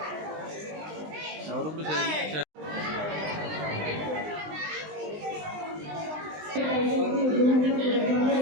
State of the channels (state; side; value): late; left; 20 ms